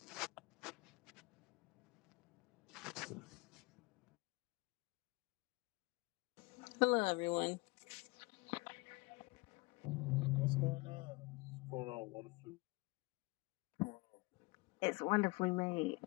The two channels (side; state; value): right; quieter; 24.9 dB